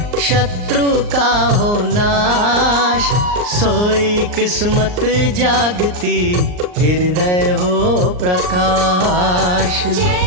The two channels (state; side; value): late; left; 39 ms